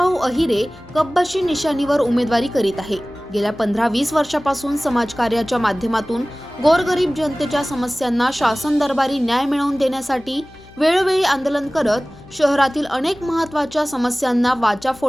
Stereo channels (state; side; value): noise; left; hum, 23 dB below the sound